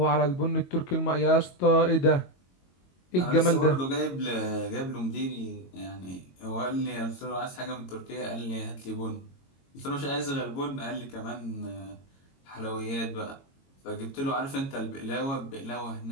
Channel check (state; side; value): late; right; 22 ms